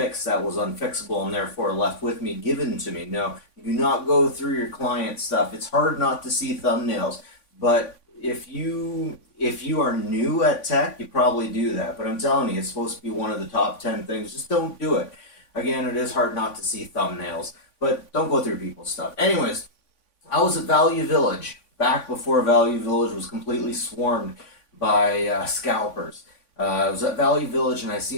that was unfixable and therefore left with me, given to me. No, you do not go through your client stuff. It's hard not to see thumbnails, but if you are new at tech, you probably do that. But I'm telling you, it's supposed to be one of the top 10 things. Just don't do it. Again, it is hard not to see thumbnails, but don't go through people's stuff. Anyways, I was at Value Village back before Value Village was completely swarmed by scalpers. I was at Value Village and I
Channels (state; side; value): late; right; 3.5 ms